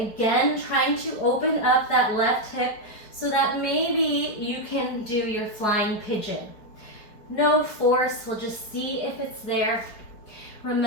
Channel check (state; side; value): late; right; 4.9 ms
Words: trying to open up that left hip so that maybe you can do your flying pigeon. No force, we'll just see if it's there.